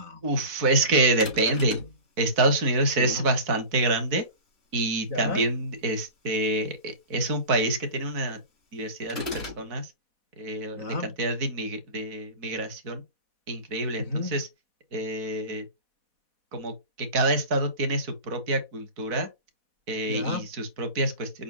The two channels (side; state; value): left; late; 4.1 ms